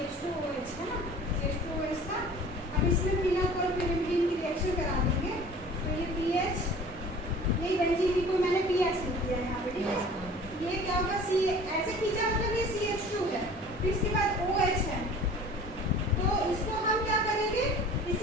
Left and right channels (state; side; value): normal; both; correlation 0.45